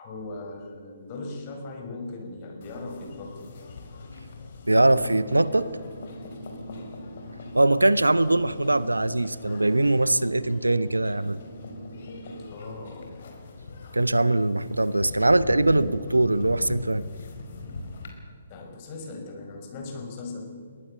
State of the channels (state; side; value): inverted; both; correlation -0.97